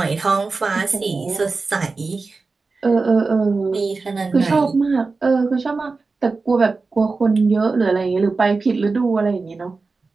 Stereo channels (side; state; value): left; quieter; 4.0 dB